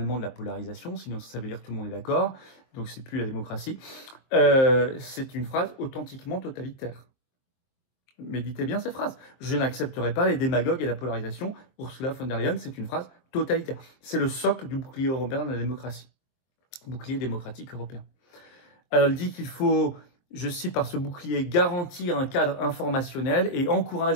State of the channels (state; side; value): late; right; 23 ms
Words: de la polarisation, sinon ça veut dire que tout le monde est d'accord, donc c'est plus la démocratie. C'est une phrase authentiquement totalitaire. Méditez bien cette phrase. Je n'accepterai pas les démagogues et la polarisation. Ursula von der Leyen, c'est une phrase totalitaire. C'est le socle du bouclier européen de la démocratie. Bouclier démocratique européen. Alors, elle dit qu'il faut, je cite par ce bouclier, garantir un cadre informationnel et